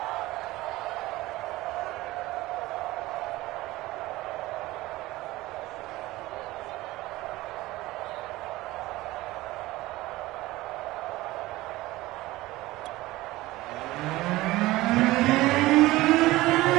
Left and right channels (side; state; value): left; quieter; 18.5 dB